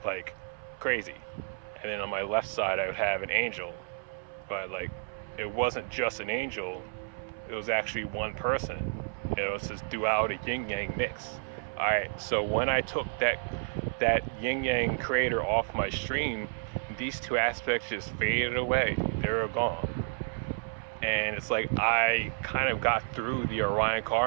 like crazy. And then on my left side, I would have an angel, but like, it wasn't just an angel, it was actually one person. It was this duality yin yang mix. All right, so when I took that yin yang creator off my stream, these two aspects just faded away. They were gone. And it's like I kind of got through the Orion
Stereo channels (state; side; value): silent; left; 57 dB below the other